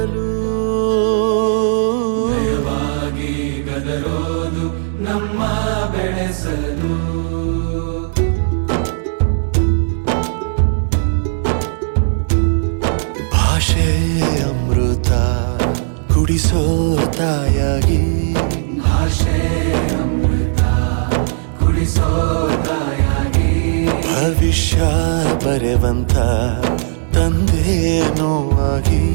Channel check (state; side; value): silent; left; 64 dB below the other